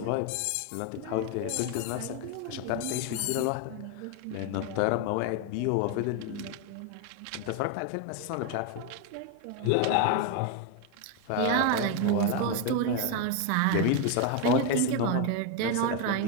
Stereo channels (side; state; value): both; different; correlation 0.01